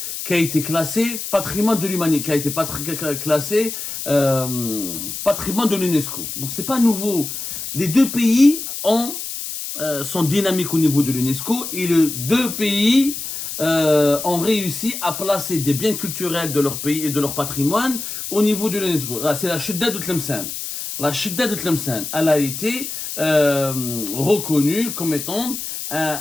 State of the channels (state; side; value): noise; left; hiss, 7 dB below the sound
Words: qui a été classé patrimoine de l'humanité, qui a été classé patrimoine de l'UNESCO. Donc c'est pas nouveau. Les deux pays sont dynamiques au niveau de l'UNESCO et les deux pays ont réussi à placer des biens culturels de leur pays et de leur patrimoine au niveau de l'UNESCO. C'est la Chedda de Tlemcen. La Chedda de Tlemcen, elle a été reconnue comme étant